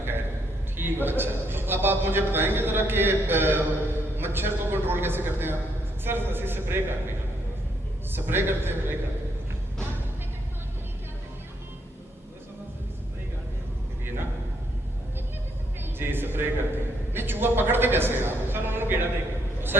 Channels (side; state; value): both; normal; correlation 0.73